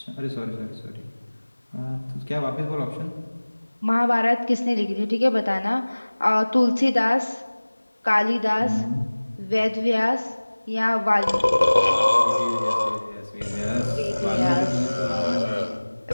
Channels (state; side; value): inverted; both; correlation -1.00